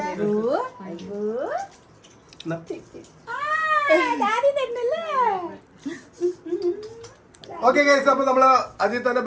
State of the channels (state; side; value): identical; both; correlation 1.00